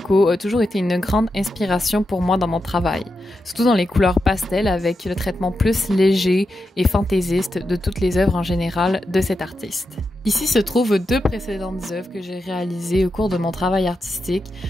a toujours été une grande inspiration pour moi dans mon travail, surtout dans les couleurs pastel avec le traitement plus léger et fantaisiste de toutes les œuvres en général de cet artiste. Ici se trouvent deux précédentes œuvres que j'ai réalisées au cours de mon travail artistique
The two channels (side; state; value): both; normal; correlation 0.88